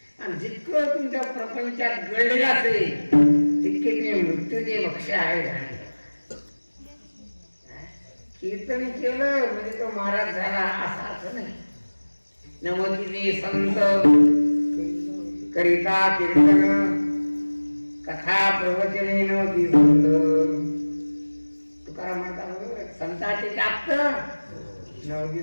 आणि जितकं तुमच्या प्रपंचात गळलेलं असेल तितके तुम्ही मृत्यूचे भक्ष आहे. कीर्तन केलं म्हणजे तो महाराज झाला असा अर्थ नाही. नमतीने संत करिता कीर्तन कथा प्रवचने नवती संत. तुकाराम म्हणतात संताचे जास्त नवती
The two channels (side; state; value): both; inverted; correlation -1.00